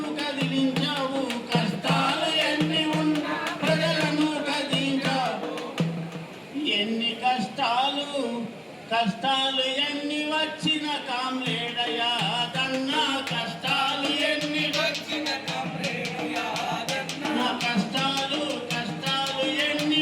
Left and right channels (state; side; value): identical; both; correlation 1.00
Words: కదిలించావు కష్టాలు ఎన్ని ఉన్నా ప్రజలను కదిలించావు ఎన్ని కష్టాలు ఎన్ని వచ్చిన కామ్రేడ యాదన్న కష్టాలు ఎన్ని వచ్చిన కామ్రేడ యాదన్న కష్టాలు ఎన్ని